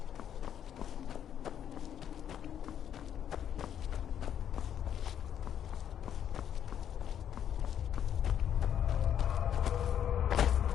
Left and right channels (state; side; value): quieter; right; 9.5 dB